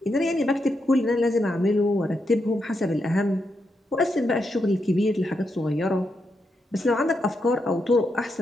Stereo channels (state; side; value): normal; both; correlation 0.83